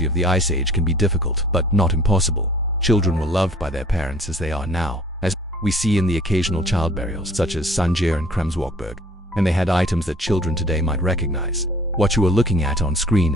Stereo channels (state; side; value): normal; both; correlation 0.52